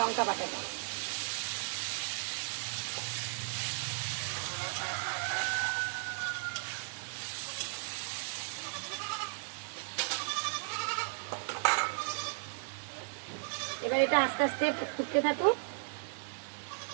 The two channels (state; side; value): silent; left; digital silence